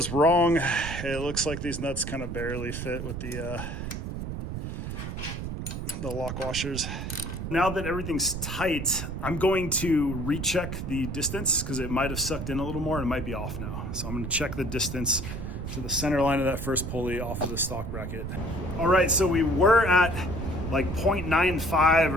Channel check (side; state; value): right; noise; rumble, 5 dB below the sound